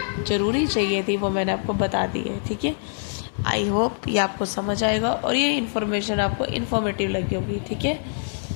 ज़रूरी चाहिए थी वो मैंने आपको बता दी है, ठीक है। आई होप ये आपको समझ आएगा और ये इन्फॉर्मेशन आपको इन्फॉर्मेटिव लगी होगी, ठीक है।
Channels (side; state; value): right; silent; 62 dB below the other